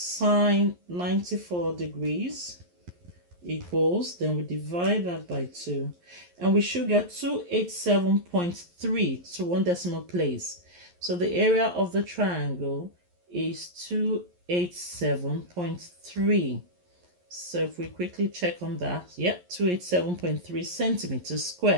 94 degrees equals, then we divide that by 2, and we should get 287.3 to one decimal place. So the area of the triangle is 287.3. So if we quickly check on that, yep, 287.3 centimeters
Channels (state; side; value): late; left; 11 ms